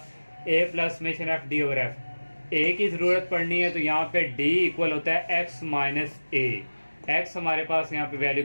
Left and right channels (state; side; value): inverted; both; correlation -1.00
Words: A plus summation F D over F. A की ज़रूरत पड़नी है तो यहाँ पे डी इक्वल होता है एक्स माइनस ए। एक्स हमारे पास यहाँ पे वैल्यू